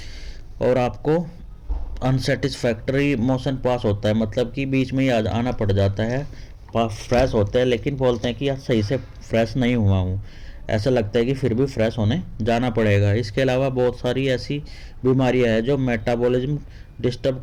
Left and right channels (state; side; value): identical; both; correlation 1.00